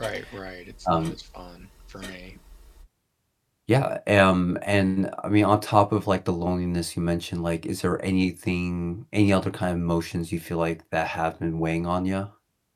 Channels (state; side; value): identical; both; correlation 1.00